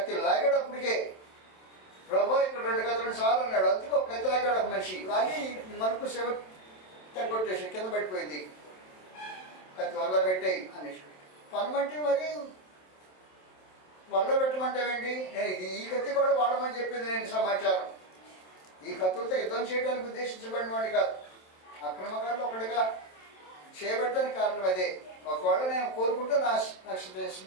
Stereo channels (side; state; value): right; late; 27 ms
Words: లాగేటప్పటికే ప్రభు ఇక్కడ 2 కత్తులను చాలు అన్నాడు. అందుకే ఒక కత్తి లాగాడు ఒక మనిషి. లాగి మనకు సెవ తగ్గొట్టేసి కింద పడిపోయింది. కత్తి వల్ల పెట్టేయి అనేసి పనమంటే మరి వల్ల పెట్టమంటావేంటి? నేను ఈ కత్తి కూడా వాడమని చెప్పింది నేను సమాచారం. ఈ కత్తులతో యుద్ధం చేయడానికి ఉద్దేశించబడిన వాడిని కాదు, అక్రమకారులు ఒకటిగా చేయబడటానికి కారణం అదే. ఒకవేళ నేను కోరుకుంటే